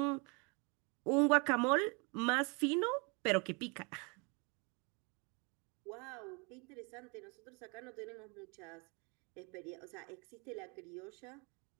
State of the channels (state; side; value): quieter; left; 31.3 dB